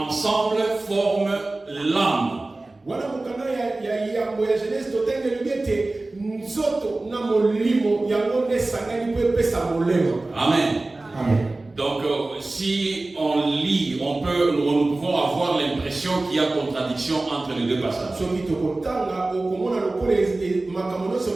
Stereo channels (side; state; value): left; quieter; 3.0 dB